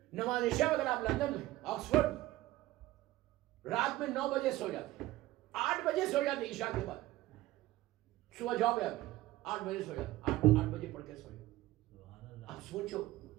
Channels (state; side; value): quieter; left; 16.9 dB